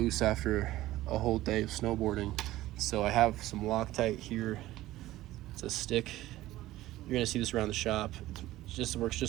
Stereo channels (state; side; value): quieter; left; 16.0 dB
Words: after a whole day of snowboarding. So I have some Loctite here. It's a stick. You're gonna see this around the shop. It works